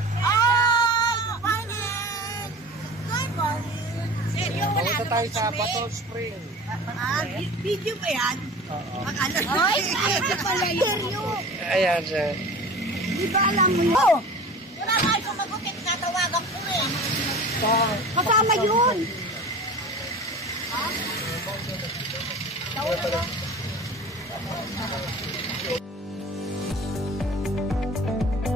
Ay! Good morning! Good morning! Seryo, wala Punta tayo sa Batol Spring. Video ba yan? Oo. Ay! Ay pala seryo! Ayan siya. Di ba alam mo yun? Oh! Wala nga yung sumagutin, tatawagan ko eh. Kasama yun!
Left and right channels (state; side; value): normal; both; correlation 0.38